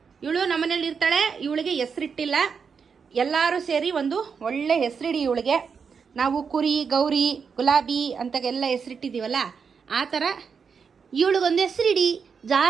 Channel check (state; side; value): quieter; left; 6.0 dB